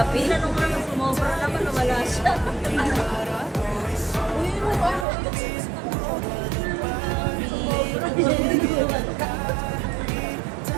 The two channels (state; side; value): drops out; left; at 5.1 s